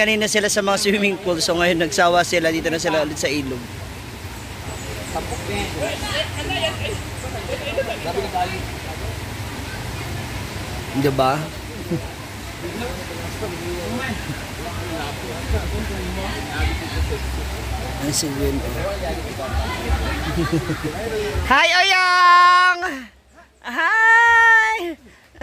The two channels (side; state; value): both; identical; correlation 1.00